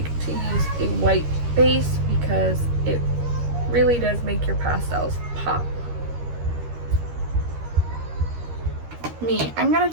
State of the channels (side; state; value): left; late; 13 ms